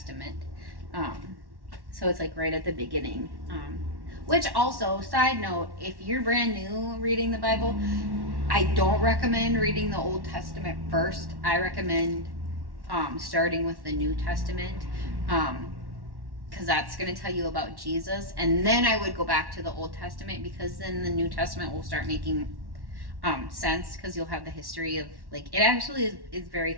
So it's like right at the beginning. Which also, side note, if you're brand new reading the Bible, I don't recommend reading the Old Testament first. I recommend starting with the New Testament, because that's going to tell you about Jesus. And then I would go back to the Old Testament, because then the New Testament will start making sense, because you'll have the history of, like, it actually is very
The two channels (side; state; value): left; late; 1.1 ms